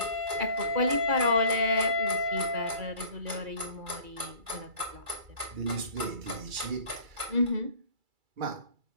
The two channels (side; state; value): left; late; 2.3 ms